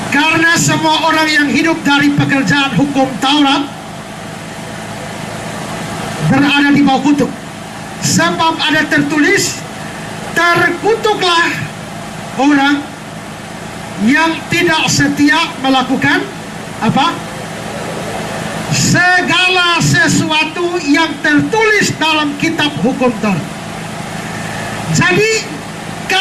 Karena semua orang yang hidup dari pekerjaan hukum Taurat berada di bawah kutuk. Sebab ada tertulis, terkutuklah orang yang tidak setia melakukan apa? Segala sesuatu yang tertulis dalam kitab hukum Taurat. Jadi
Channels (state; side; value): identical; both; correlation 1.00